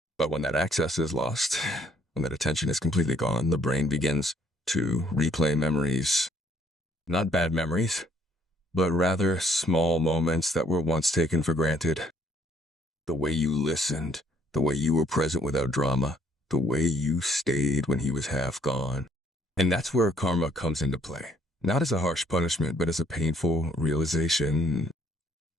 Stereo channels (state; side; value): normal; both; correlation 0.64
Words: But when that access is lost, when that attention is completely gone, the brain begins to replay memories. Not bad memories, but rather small moments that were once taken for granted. The way you listened, the way you were present without drama, the way you stayed when he was half gone. And that's where karma comes into play. Not as a harsh punishment, but as a painful realization.